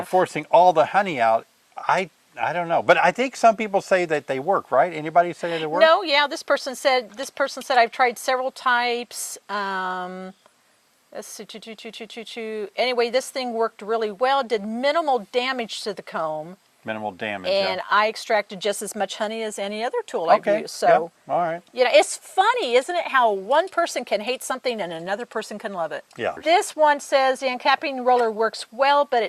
forcing all the honey out. I don't know, but I think some people say that they work, right? Anybody say that they work? No, yeah. This person said I've tried several types. Let's see, anyway, this thing worked really well. Did minimal damage to the comb. Minimal damage. And I extracted just as much honey as any other tool I've used. So, all right. It's funny, isn't it, how one person can hate something and another person can love it. Yeah. This one says the uncapping roller works well, but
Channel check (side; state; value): both; identical; correlation 1.00